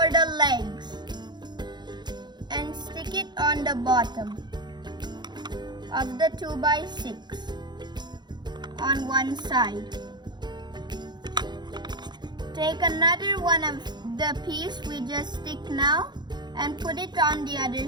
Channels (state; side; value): late; left; 0.21 ms